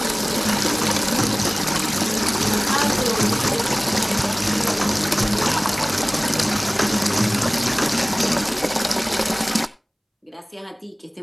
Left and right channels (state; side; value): identical; both; correlation 1.00